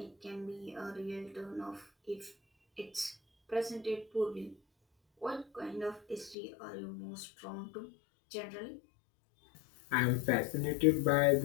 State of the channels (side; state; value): right; drops out; at 6.4 s